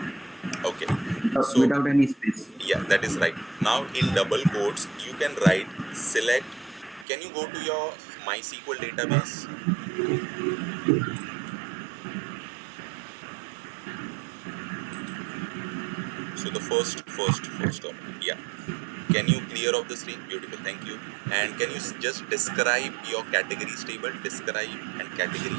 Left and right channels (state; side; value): drops out; left; at 7.1 s